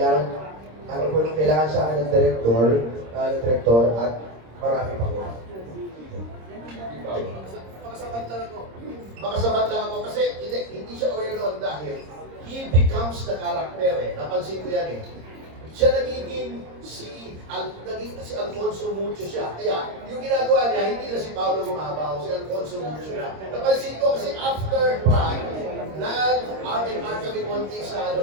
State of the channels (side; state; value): left; late; 26 ms